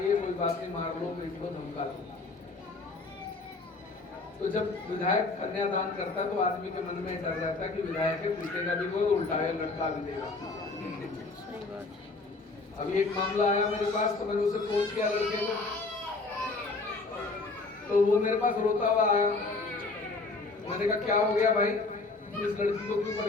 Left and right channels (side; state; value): right; quieter; 3.6 dB